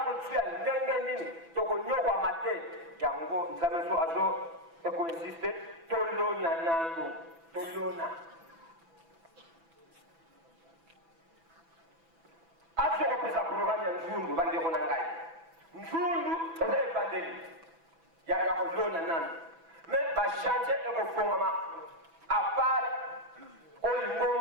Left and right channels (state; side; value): late; left; 6.0 ms